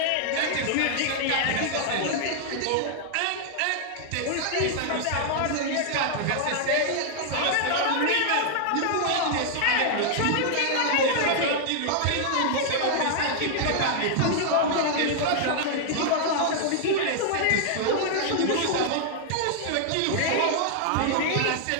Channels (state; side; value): different; both; correlation 0.00